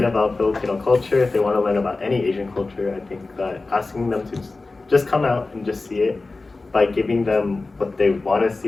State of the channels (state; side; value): quieter; right; 3.5 dB